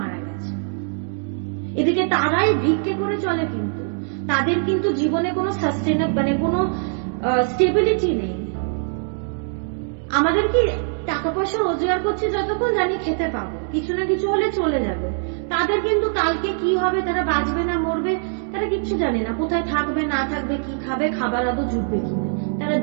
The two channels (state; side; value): silent; left; 61 dB below the other